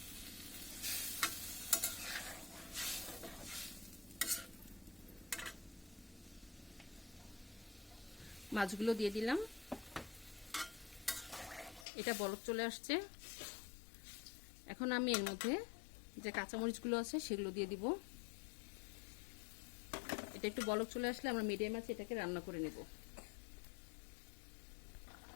মাছগুলো দিয়ে দিলাম। এটা বলক চলে আসছে। এখন আমি এর মধ্যে যে কাঁচামরিচগুলো আছে সেগুলো দিয়ে দিব। এটা একটু বলক চলে আসলে আমরা মিডিয়াম আছে এটাকে রান্না করে নেব।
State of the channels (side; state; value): right; drops out; at 11.9 s